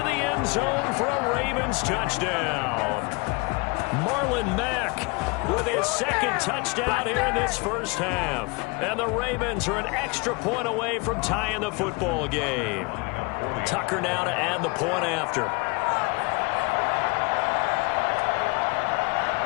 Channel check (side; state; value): right; quieter; 29.0 dB